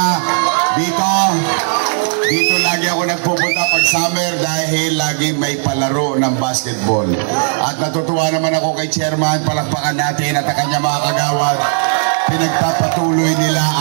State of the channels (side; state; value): left; silent; digital silence